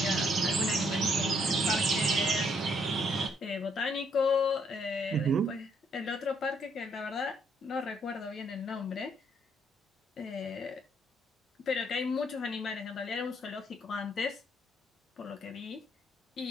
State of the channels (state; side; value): normal; both; correlation 0.70